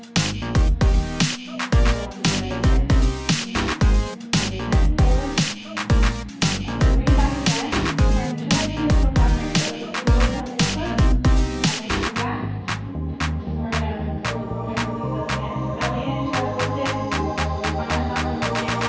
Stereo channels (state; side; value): identical; both; correlation 1.00